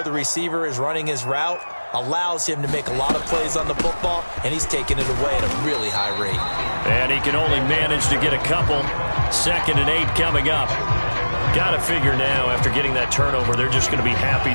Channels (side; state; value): both; inverted; correlation -1.00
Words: the receiver is running his route allows him to make a lot of plays on the football, and he's taking it away at a really high rate. And he can only manage to get a couple. 2nd and 8 coming up. Got to figure now, after getting that turnover, they're just going to be happy